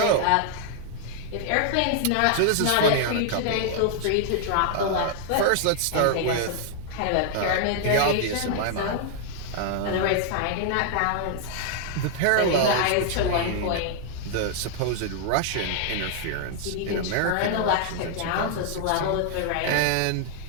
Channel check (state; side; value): different; both; correlation 0.00